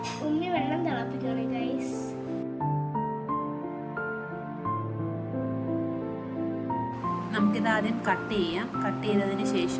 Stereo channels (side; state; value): both; identical; correlation 1.00